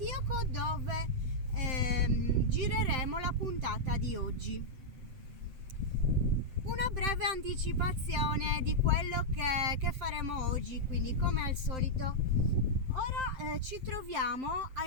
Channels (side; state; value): left; late; 7.7 ms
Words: dove gireremo la puntata di oggi. Una breve anticipazione di quello che faremo oggi, quindi come al solito. Ora ci troviamo a